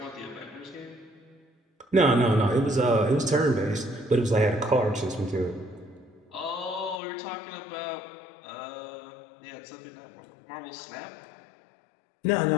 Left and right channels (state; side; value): drops out; right; at 7.0 s